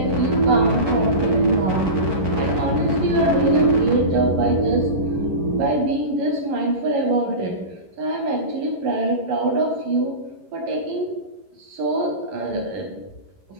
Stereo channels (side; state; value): left; late; 11 ms